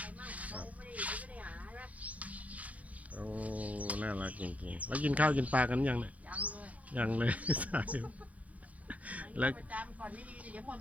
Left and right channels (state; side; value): late; left; 0.070 ms